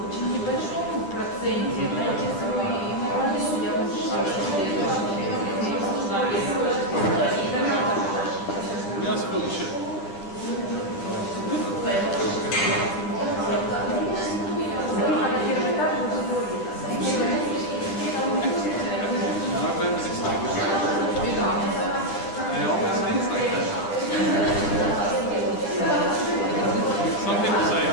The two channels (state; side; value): late; right; 10 ms